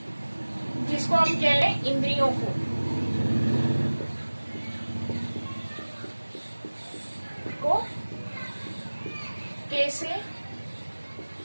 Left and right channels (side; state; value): both; inverted; correlation -1.00